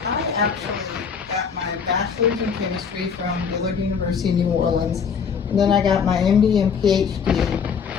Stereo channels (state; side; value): quieter; right; 6.4 dB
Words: I actually got my bachelor's in chemistry from Dillard University in New Orleans, and then I got my MD and PhD